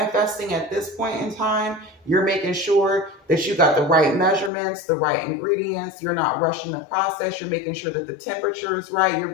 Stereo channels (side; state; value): right; drops out; at 4.5 s